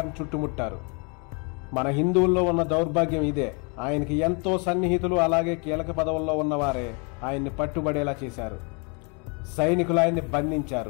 చుట్టుముట్టారు. మన హిందువుల్లో ఉన్న దౌర్భాగ్యం ఇదే. ఆయనకి ఎంతో సన్నిహితులు అలాగే కీలక పదవుల్లో ఉన్నవారే ఆయన్ని పట్టుబడేలా చేశారు. సైనికులు ఆయన్ని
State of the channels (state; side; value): quieter; right; 34.5 dB